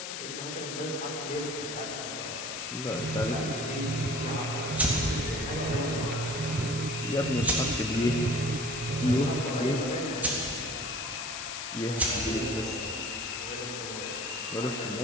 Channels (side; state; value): left; noise; hiss, 6 dB below the sound